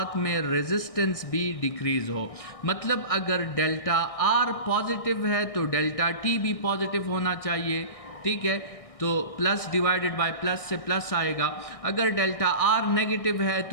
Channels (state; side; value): late; right; 1.6 ms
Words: में रेजिस्टेंस भी डिक्रीज़ हो। मतलब अगर डेल्टा आर पॉजिटिव है तो डेल्टा टी भी पॉजिटिव होना चाहिए, ठीक है? तो प्लस डिवाइडेड बाय प्लस से प्लस आएगा। अगर डेल्टा आर नेगेटिव है